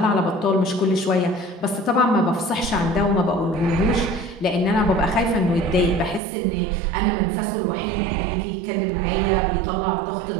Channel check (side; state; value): left; drops out; at 6.2 s